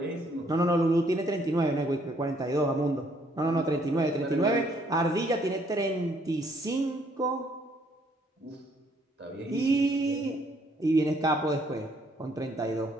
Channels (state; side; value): normal; both; correlation 0.66